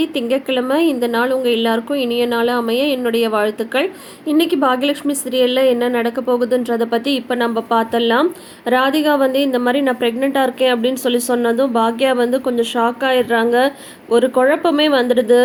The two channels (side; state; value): both; identical; correlation 1.00